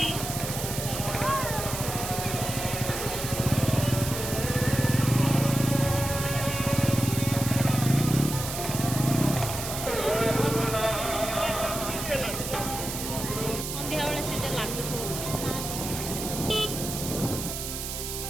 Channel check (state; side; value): noise; right; hiss, 6 dB below the sound